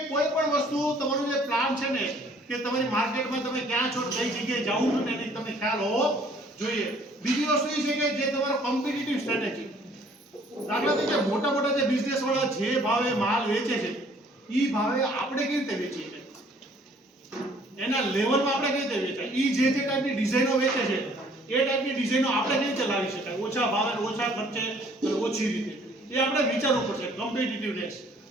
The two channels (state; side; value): normal; both; correlation 0.58